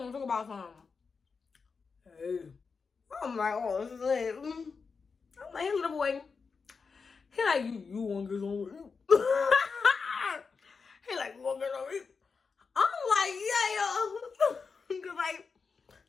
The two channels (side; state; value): right; quieter; 5.1 dB